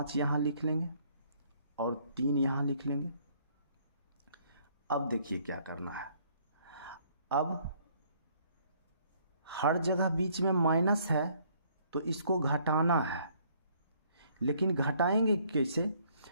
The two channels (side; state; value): both; inverted; correlation -0.63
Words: यहाँ लिख लेंगे और 3 यहाँ लिख लेंगे। अब देखिए क्या करना है, अब हर जगह बीच में माइनस है तो इसको घटाना है, लेकिन घटाएंगे कैसे,